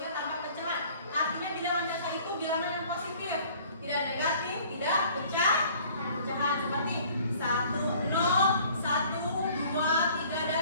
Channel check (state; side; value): inverted; both; correlation -0.53